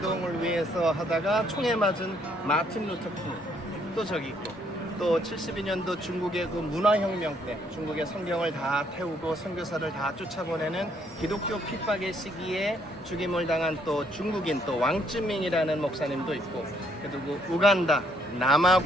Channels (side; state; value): both; normal; correlation 0.69